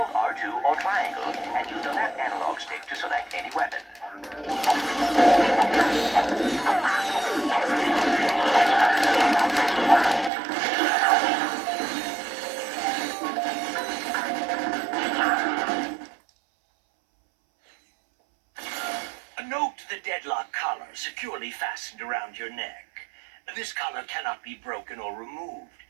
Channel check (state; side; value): drops out; left; at 10.3 s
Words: R2 or triangle and use the left analog stick to select any weapon. Note the deadlock collar securely fastened around your neck. This collar cannot be broken or removed.